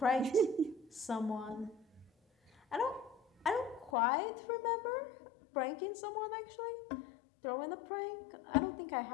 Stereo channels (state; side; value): drops out; right; at 3.9 s